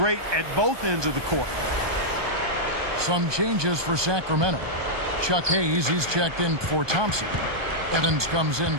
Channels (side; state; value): left; late; 1.2 ms